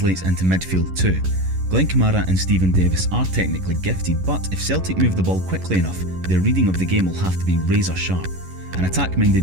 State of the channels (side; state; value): left; late; 11 ms